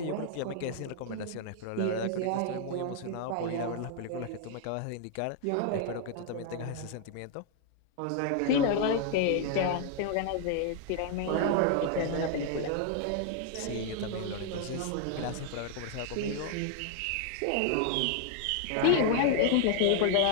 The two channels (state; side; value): different; both; correlation 0.00